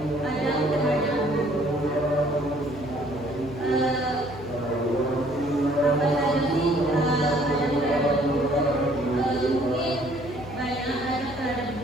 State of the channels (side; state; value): left; noise; hum, 13 dB below the sound